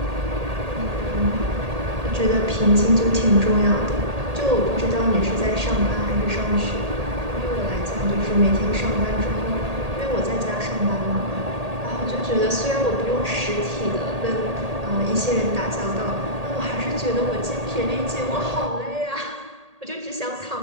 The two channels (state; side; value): late; left; 1.8 ms